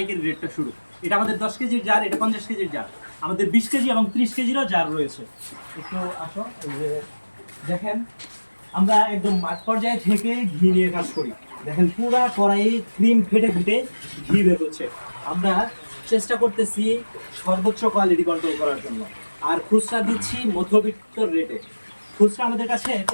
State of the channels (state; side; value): inverted; both; correlation -1.00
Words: রেটটা শুরু। এটা আমাদের 10 কেজির জার, এটা 50 কেজির জার, আমাদের 20 কেজি এবং 30 কেজিরও জার রয়েছে। একটু আসো, এই যে দেখেন, আমরা একদম মাঠ পর্যায়ে থেকে ঘি নিয়ে কাজ করি। দেখেন পুরা কড়াইয়ে ক্রিম ফেটে ফেটে ঘি বের হচ্ছে। আমরা চেষ্টা করতেছি সর্বোচ্চ কোয়ালিটি কন্ট্রোল করার জন্য, আর খুচরা দিচ্ছি মধ্যবিত্ত রেটে। খুচরা আমাদের কাছে